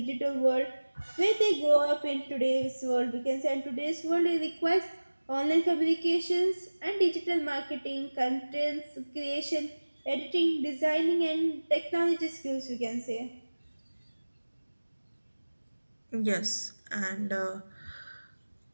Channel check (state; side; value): inverted; both; correlation -1.00